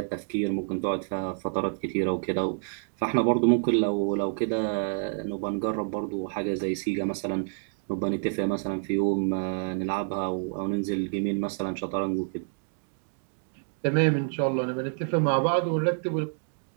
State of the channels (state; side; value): silent; left; digital silence